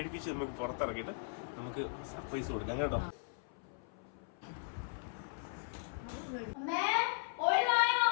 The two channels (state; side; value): silent; right; 53 dB below the other